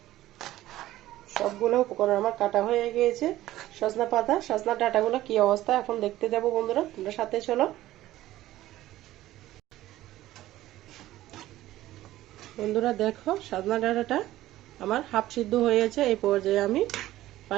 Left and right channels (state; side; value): quieter; left; 15.1 dB